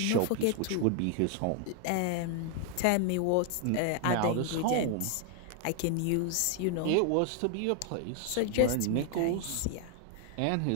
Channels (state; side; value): different; both; correlation 0.00